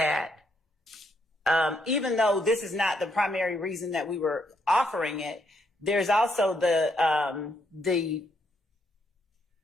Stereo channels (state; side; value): normal; both; correlation 0.75